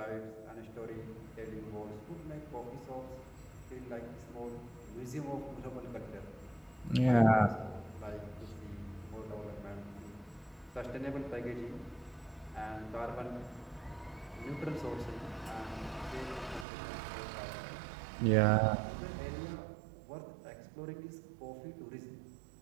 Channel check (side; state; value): left; drops out; at 16.7 s